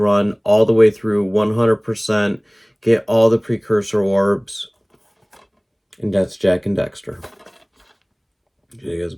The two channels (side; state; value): both; identical; correlation 1.00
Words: all the way through 100%, get all the precursor orbs. And that's Jak and Daxter. You guys